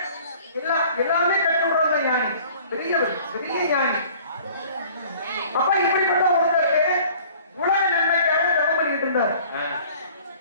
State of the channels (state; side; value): inverted; both; correlation -0.51